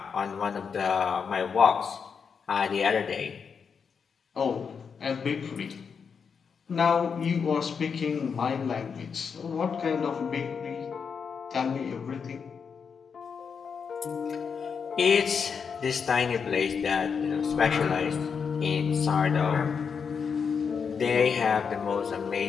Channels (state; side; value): quieter; right; 6.2 dB